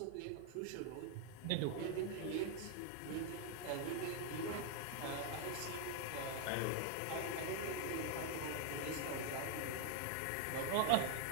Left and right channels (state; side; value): different; both; correlation 0.00